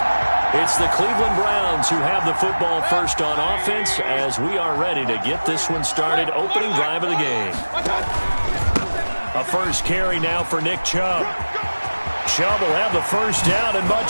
It's the Cleveland Browns who have the football first on offense as we are ready to get this one started. Opening drive of the game. A first carry now for Nick Chubb. Chubb will have the first down and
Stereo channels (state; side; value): inverted; both; correlation -1.00